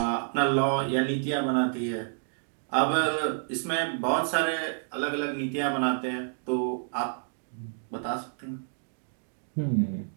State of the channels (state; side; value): silent; left; digital silence